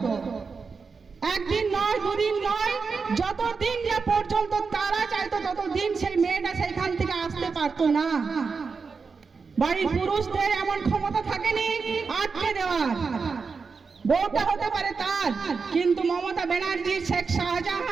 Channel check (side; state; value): left; quieter; 5.0 dB